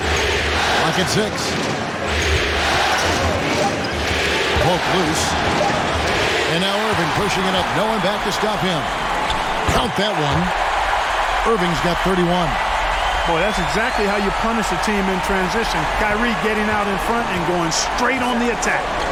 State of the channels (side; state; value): both; identical; correlation 1.00